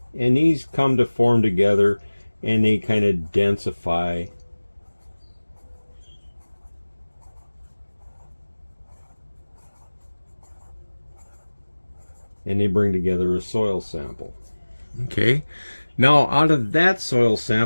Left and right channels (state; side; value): inverted; both; correlation -1.00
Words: And these come to form together and they kind of densify. And they bring together a soil sample. Okay. Now out of that soil